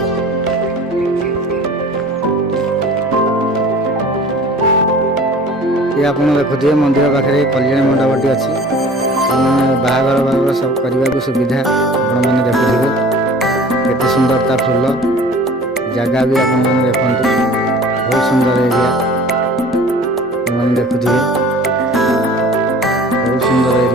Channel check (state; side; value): normal; both; correlation 0.45